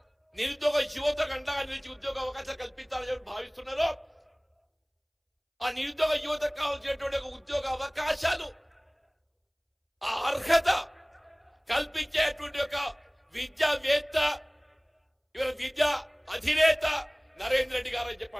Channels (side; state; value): both; identical; correlation 1.00